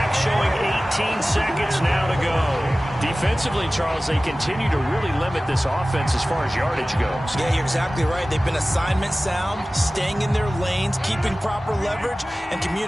showing 18 seconds now to go. Defensively, Charles, they continue to really limit this offense as far as yardage goes. Yeah, you're exactly right. They've been assignment sound, staying in their lanes, keeping proper leverage, and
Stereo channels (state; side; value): normal; both; correlation 0.97